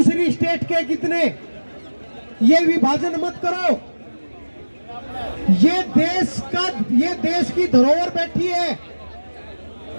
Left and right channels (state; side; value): inverted; both; correlation -1.00